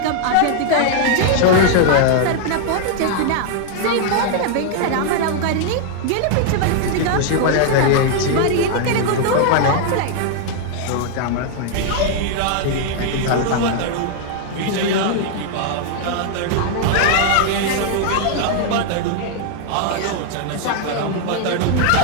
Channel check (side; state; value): both; different; correlation 0.00